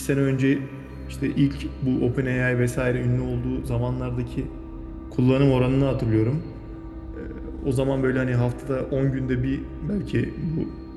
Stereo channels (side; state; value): both; identical; correlation 1.00